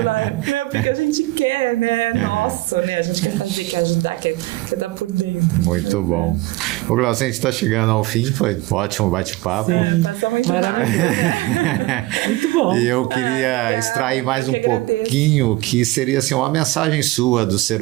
Porque a gente quer, né? Nossa, né? A gente quer fazer, quer ajudar, quer dar por dentro. Muito bom. Ô, Glaucio, a gente está chegando ao fim, foi um ótimo bate-papo. Sim, maravilhoso. Muito bom. E eu queria extrair mais um pouquinho, que seria assim, uma mensagem sua do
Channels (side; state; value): left; quieter; 19.4 dB